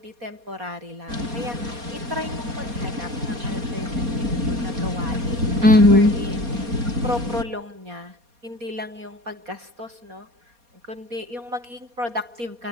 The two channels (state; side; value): late; left; 4.2 ms